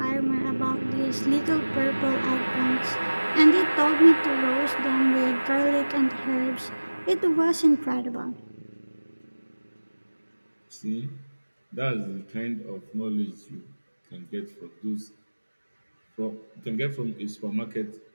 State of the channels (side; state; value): both; inverted; correlation -1.00